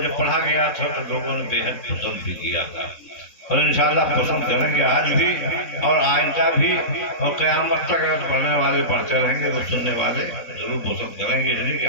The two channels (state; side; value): late; right; 3.7 ms